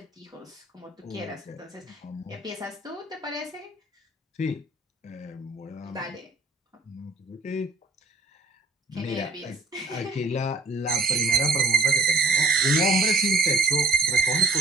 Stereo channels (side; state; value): left; quieter; 3.0 dB